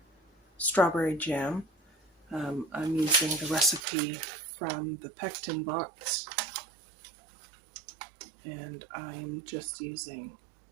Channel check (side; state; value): left; drops out; at 3.8 s